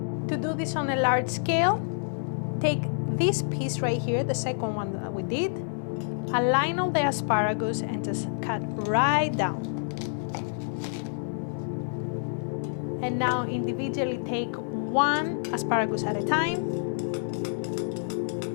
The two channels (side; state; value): right; silent; digital silence